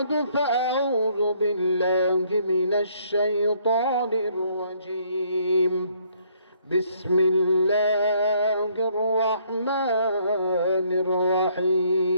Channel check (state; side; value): inverted; both; correlation -0.66